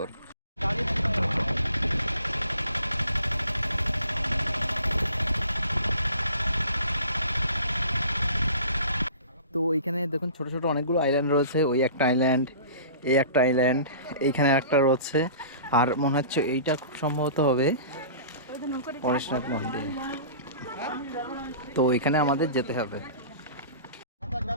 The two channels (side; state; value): both; inverted; correlation -0.43